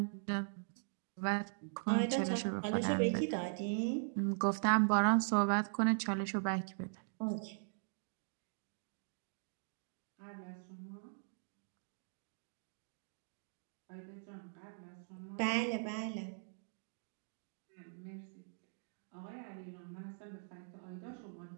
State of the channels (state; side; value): silent; left; digital silence